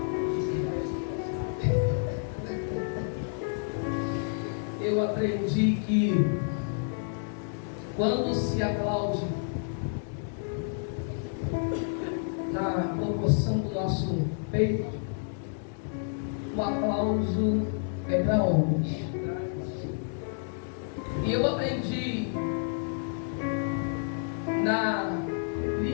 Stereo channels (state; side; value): silent; right; digital silence